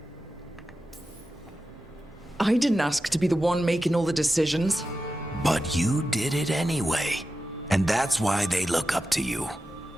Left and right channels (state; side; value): normal; both; correlation 0.92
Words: I didn't ask to be the one making all the decisions. But you did it anyway. And that's why they look up to you.